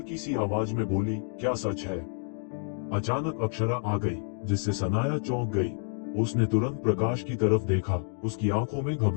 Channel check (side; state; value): right; silent; 59 dB below the other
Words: सी आवाज में बोली, क्या सच है? अचानक अक्षरा आ गई, जिससे सनाया चौंक गई। उसने तुरंत प्रकाश की तरफ देखा। उसकी आंखों में